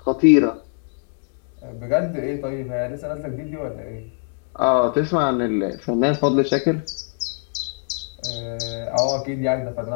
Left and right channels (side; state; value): right; silent; 63 dB below the other